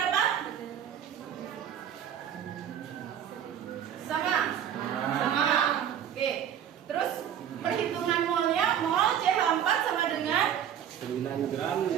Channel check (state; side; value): quieter; left; 9.5 dB